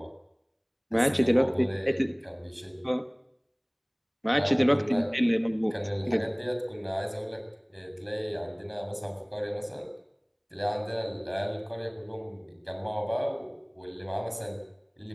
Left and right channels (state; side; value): identical; both; correlation 1.00